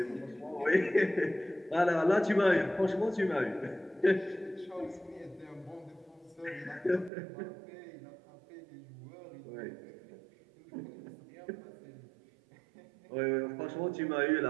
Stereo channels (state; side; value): drops out; left; at 7.1 s